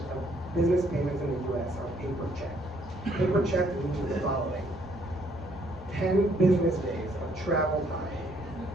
of business payments in the US are paper check. Paper check means the following: 10 business days of travel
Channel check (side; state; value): both; normal; correlation 0.67